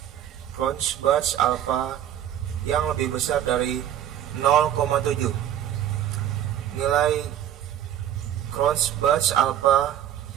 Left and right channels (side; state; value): left; quieter; 10.8 dB